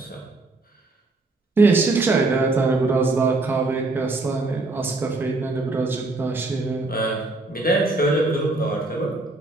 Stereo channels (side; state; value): left; quieter; 3.1 dB